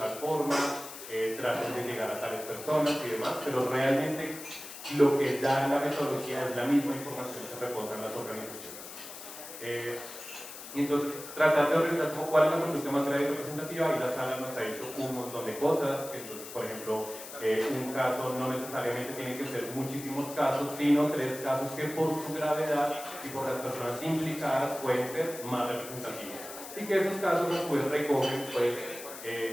forma, traten de llegar a tales personas y demás, pero realmente lo que da la metodología es la misma información que reposa en las organizaciones. Y entonces, tratar de organizar cuál es la conducta más grave y representativa, y la sala nos ha hecho un montón de cosas. Entonces, por ejemplo, un caso no necesariamente tiene que ser muchísimos casos, sino 3 casos que por su gravedad y por las personas implicadas pueden ser más representativos. Y que esos casos pues recogen pues,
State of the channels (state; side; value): noise; left; hiss, 12 dB below the sound